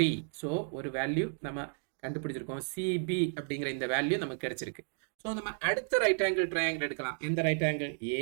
So ஒரு வேல்யூ நம்ம கண்டுபிடிச்சிருக்கோம், சிபி அப்படிங்கிற இந்த வேல்யூ நமக்கு கிடைச்சிருக்கு. ஸோ நம்ம அடுத்த ரைட் ஆங்கிள் ட்ரையாங்கிள் எடுக்கலாம். எந்த right angle,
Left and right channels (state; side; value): silent; left; 56 dB below the other